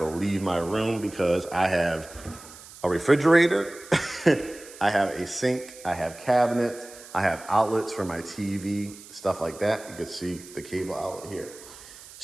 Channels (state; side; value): noise; right; hiss, 18 dB below the sound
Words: leave my room because I have a refrigerator, I have a sink, I have cabinets, I have outlets for my TV, stuff like that. You can see the cable outlet here.